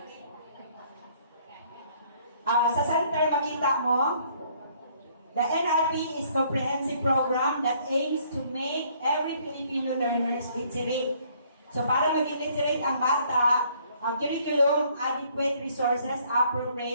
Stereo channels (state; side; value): inverted; both; correlation -0.63